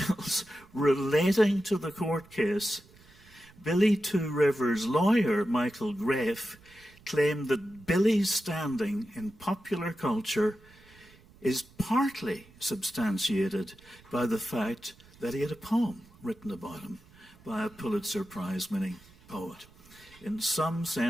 relating to the court case, Billy Two Rivers' lawyer, Michael Graff, claimed that Billy's standing in popular culture is partly substantiated by the fact that he had a poem written about him by a Pulitzer Prize-winning poet. In some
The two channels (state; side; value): noise; right; rumble, 26 dB below the sound